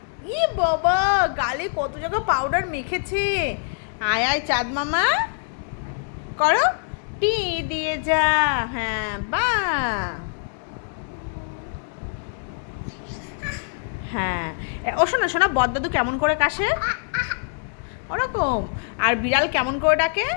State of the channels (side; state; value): right; silent; digital silence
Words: ই বাবা, গালে কত জায়গা পাউডার মেখেছে। আয় আয় চাঁদ মামা করো, টি দিয়ে যা। হ্যাঁ বা, হ্যাঁ। ও শোনা শোনা, বদদাদু কেমন করে কাশে? ওরকম। আর বিড়াল কেমন করে ডাকে?